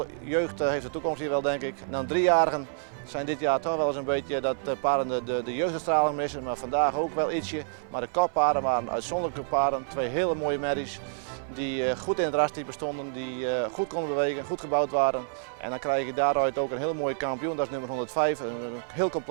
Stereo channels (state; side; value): silent; left; 58 dB below the other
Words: Jeugd heeft de toekomst hier wel, denk ik. En dan 3-jarigen zijn dit jaar toch wel eens een beetje dat paarden de jeugdstraling missen, maar vandaag ook wel ietsje. Maar de koppaarden waren uitzonderlijke paarden, 2 hele mooie merries. Die goed in het rastype stonden, die goed konden bewegen, goed gebouwd waren. En dan krijg je daaruit ook een heel mooie kampioen, dat is nummer 105. Een heel